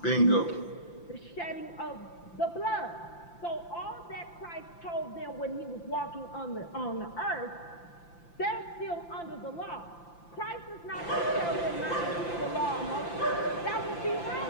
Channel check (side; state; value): right; late; 5.8 ms